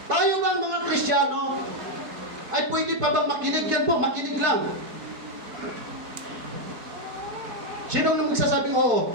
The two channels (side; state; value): left; late; 4.5 ms